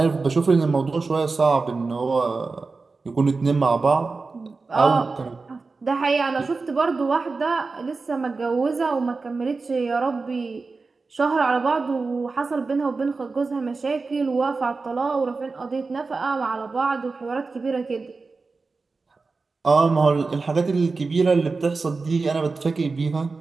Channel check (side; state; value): left; quieter; 4.1 dB